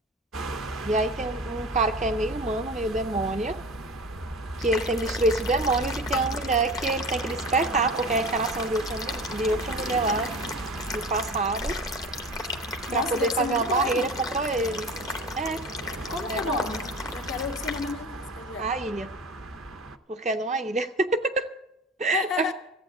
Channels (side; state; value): both; normal; correlation 0.34